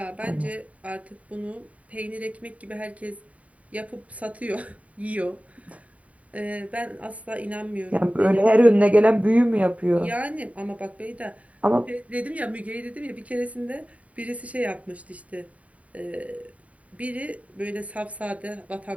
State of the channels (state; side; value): late; left; 0.068 ms